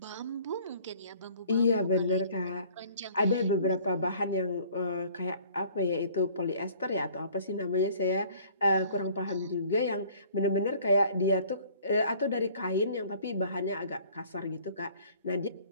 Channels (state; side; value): inverted; both; correlation -0.54